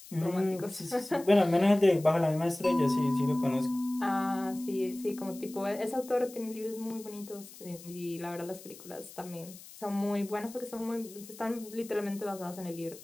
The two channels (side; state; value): left; noise; hiss, 18 dB below the sound